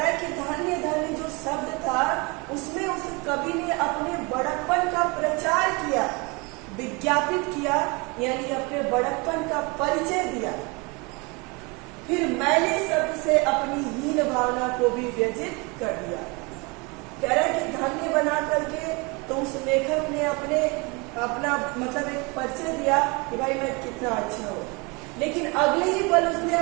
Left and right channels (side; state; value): left; quieter; 28.3 dB